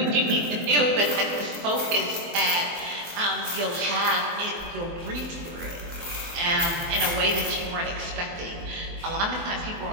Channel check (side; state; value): left; late; 24 ms